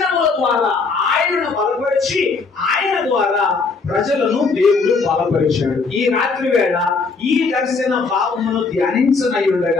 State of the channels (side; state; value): right; quieter; 4.4 dB